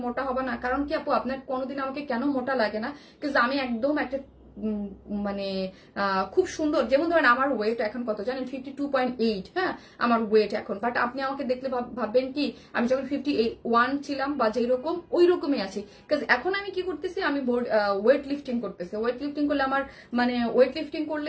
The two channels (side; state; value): both; identical; correlation 1.00